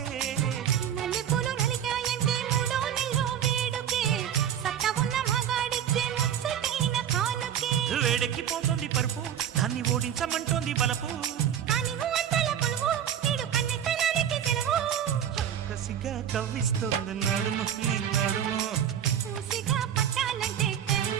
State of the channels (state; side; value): quieter; left; 9.5 dB